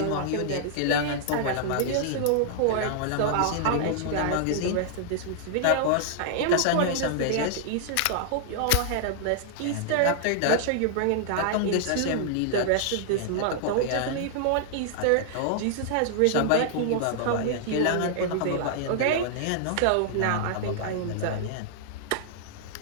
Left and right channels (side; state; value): both; different; correlation -0.01